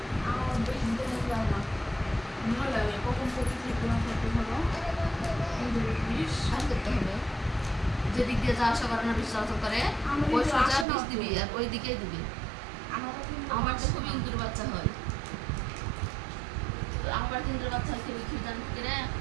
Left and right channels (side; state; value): left; drops out; at 10.9 s